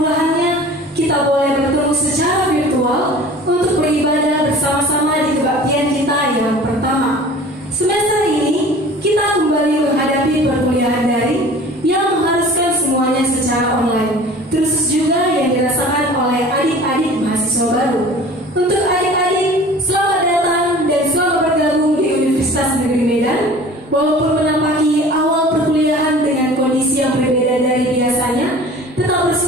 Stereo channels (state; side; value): normal; both; correlation 0.44